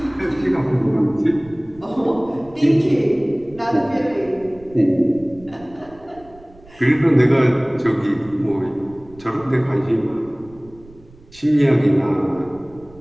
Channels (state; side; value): noise; right; rumble, 24 dB below the sound